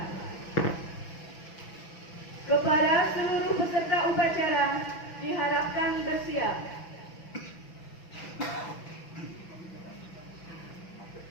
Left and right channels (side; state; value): right; late; 6.0 ms